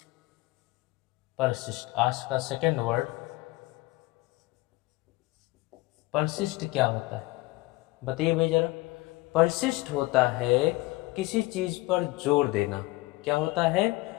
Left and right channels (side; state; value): right; quieter; 20.7 dB